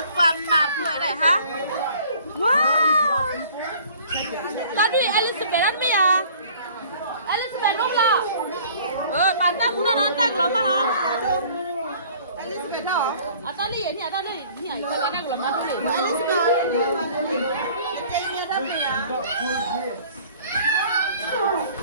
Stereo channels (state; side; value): inverted; both; correlation -0.52